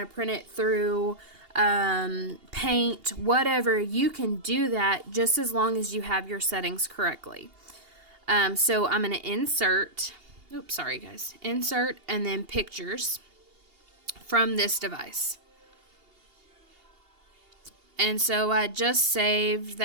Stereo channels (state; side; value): late; left; 2.8 ms